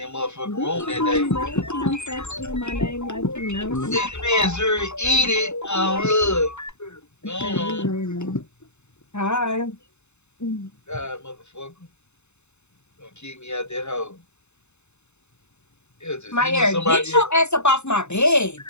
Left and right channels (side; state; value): right; late; 0.82 ms